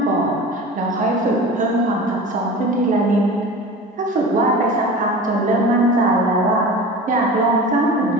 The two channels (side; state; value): both; normal; correlation 0.35